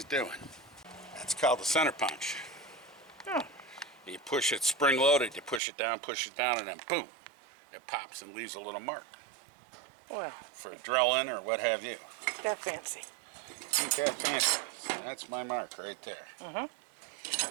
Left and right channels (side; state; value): left; drops out; at 5.6 s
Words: doing. That's called the center punch. Oh. You push it spring-loaded, you push it down, and then boom, it pops and leaves a little mark. Well. For a drilling or what have you. That fancy. Ain't that fancy. So that's my mark right there.